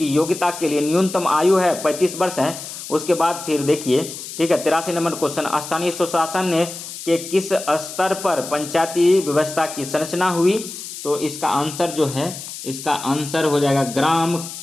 योग्यता के लिए न्यूनतम आयु है 35 वर्ष है। उसके बाद फिर देखिए, ठीक है, 83 नंबर क्वेश्चन, स्थानीय स्वशासन के किस स्तर पर पंचायती व्यवस्था की संरचना हुई? तो इसका आंसर जो है, इसका आंसर हो जाएगा ग्राम,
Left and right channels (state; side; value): noise; left; hiss, 10 dB below the sound